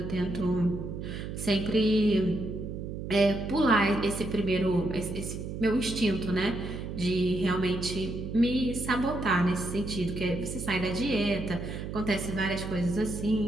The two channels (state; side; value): noise; right; hum, 7 dB below the sound